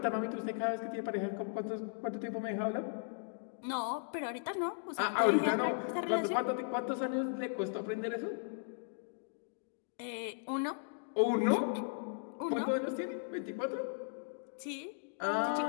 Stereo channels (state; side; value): silent; right; digital silence